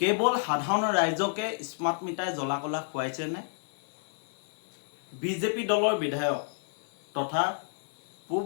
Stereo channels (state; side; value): silent; right; 58 dB below the other